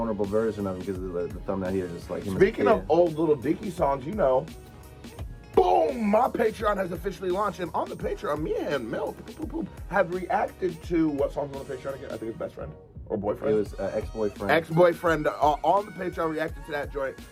version of him because of the thumbnail here, just like him. Speaking of old Little Dicky songs, you know, boom! My Patreon has officially launched, and on the Patreon, me and Milk have reacted to what songs on the Patreon again? I think it's Best Friend or Boyfriend. It was ex-boyfriend. Ex-boyfriend on the Patreon reacted to that joint.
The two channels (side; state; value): both; identical; correlation 1.00